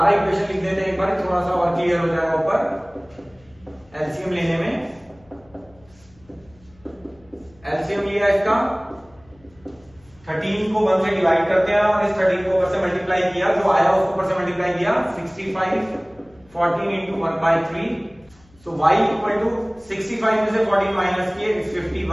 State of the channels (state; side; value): noise; left; hum, 29 dB below the sound